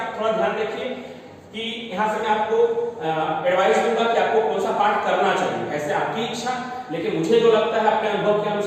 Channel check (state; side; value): identical; both; correlation 1.00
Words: थोड़ा ध्यान रखिए कि यहाँ से मैं आपको एडवाइस दूंगा कि आपको कौन सा पार्ट करना चाहिए, ऐसे आपकी इच्छा, लेकिन मुझे जो लगता है अपने अनुभव के